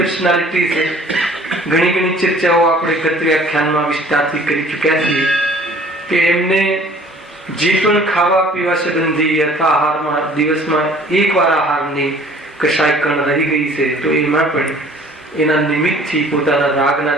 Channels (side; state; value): both; normal; correlation 0.52